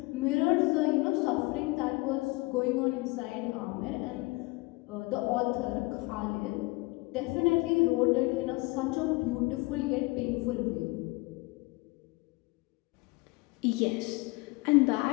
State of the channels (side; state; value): right; quieter; 24.3 dB